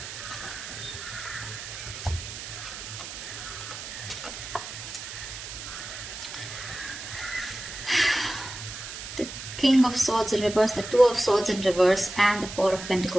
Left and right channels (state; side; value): noise; right; hiss, 9 dB below the sound